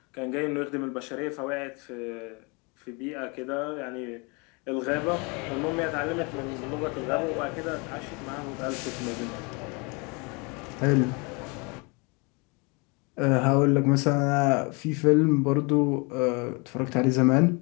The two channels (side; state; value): right; quieter; 30.4 dB